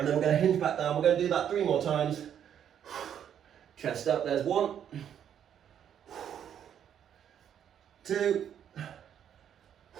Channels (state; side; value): quieter; left; 9.3 dB